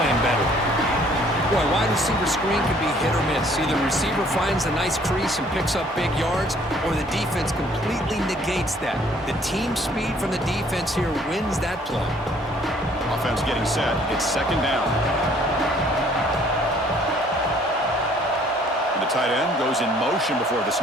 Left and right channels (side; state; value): both; normal; correlation 0.59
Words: better. Boy, wide receiver screen can be hit or miss. Either the receiver finds a nice crease and picks up big yards, or the defense completely negates that. The team speed from the defense here wins that play. Offense getting set. It's second down. And the tight end goes in motion before the